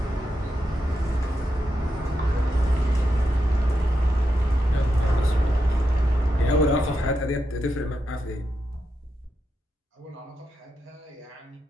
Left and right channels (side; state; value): both; normal; correlation 0.86